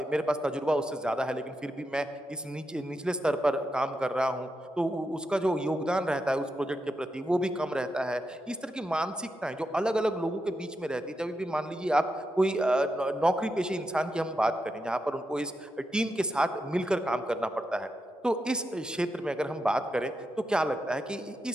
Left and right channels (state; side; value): normal; both; correlation 0.86